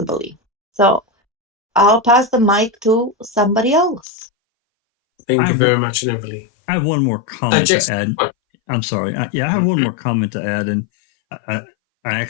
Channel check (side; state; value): right; drops out; at 4.0 s